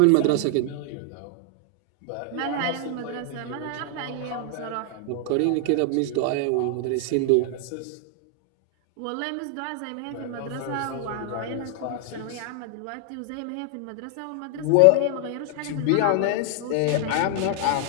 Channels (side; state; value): both; different; correlation 0.00